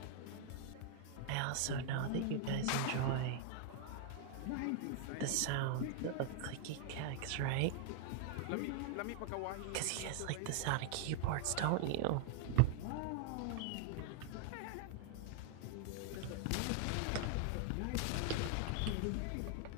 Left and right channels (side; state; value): both; different; correlation 0.00